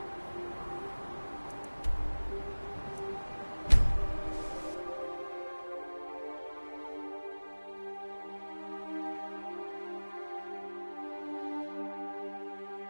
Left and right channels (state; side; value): inverted; both; correlation -1.00